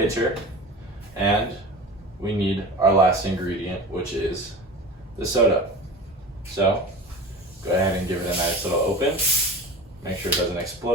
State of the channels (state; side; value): normal; both; correlation 0.33